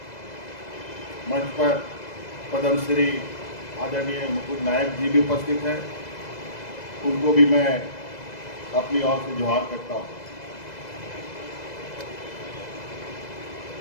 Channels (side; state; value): right; late; 2.0 ms